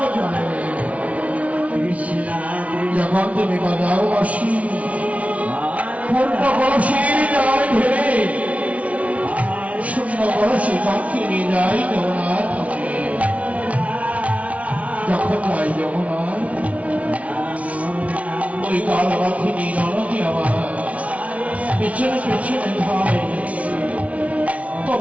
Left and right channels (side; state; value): left; late; 0.066 ms